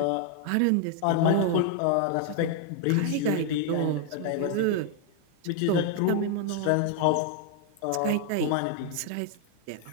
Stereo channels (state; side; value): different; both; correlation 0.00